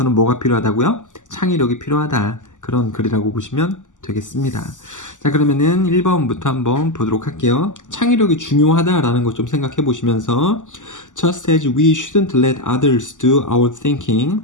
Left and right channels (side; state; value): right; late; 0.87 ms